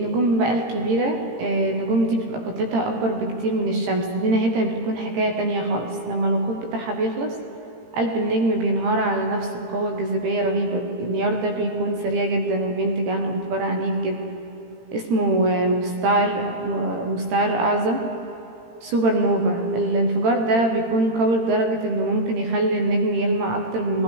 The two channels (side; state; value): left; late; 18 ms